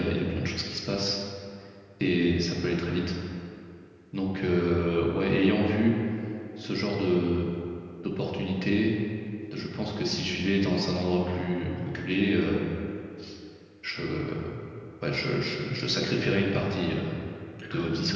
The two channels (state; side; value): identical; both; correlation 1.00